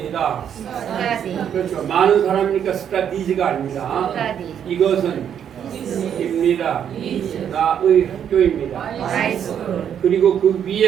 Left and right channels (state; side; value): quieter; left; 8.8 dB